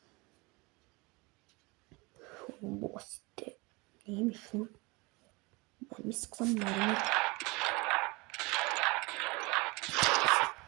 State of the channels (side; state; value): left; quieter; 25.7 dB